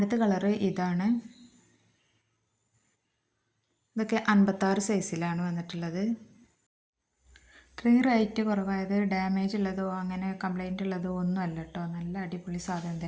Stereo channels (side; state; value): both; identical; correlation 1.00